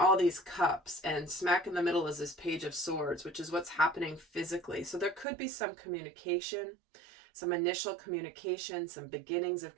these cups, and smack in the middle is this Page of Swords, which is what's happening physically. So there could be some communication, some initial communication, some beginnings of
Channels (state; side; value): drops out; left; at 5.2 s